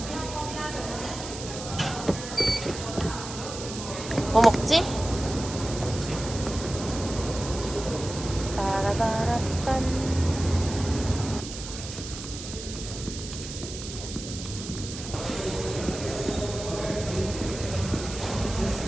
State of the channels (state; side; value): noise; right; hiss, 10 dB below the sound